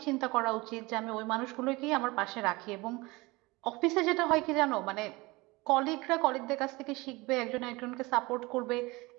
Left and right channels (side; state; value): left; quieter; 23.0 dB